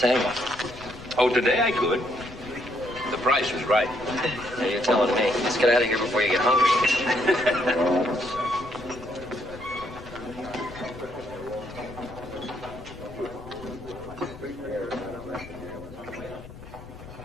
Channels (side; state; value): left; noise; rumble, 16 dB below the sound